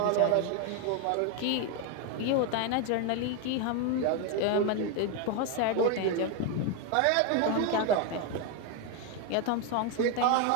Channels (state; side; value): different; both; correlation 0.02